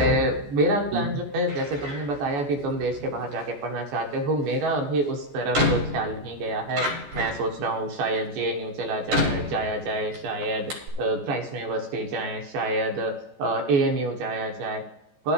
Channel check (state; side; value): late; left; 14 ms